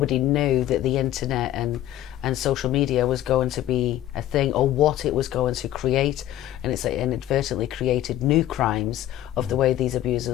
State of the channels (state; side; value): quieter; right; 13.1 dB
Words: knew that the internet and social media was going to be a thing, or what it was going to create, and it's inadvertently created new crimes of the way these